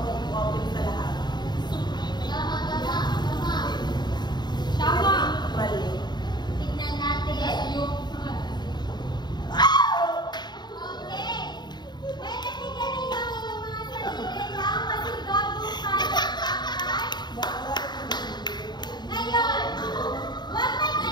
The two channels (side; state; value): right; late; 0.21 ms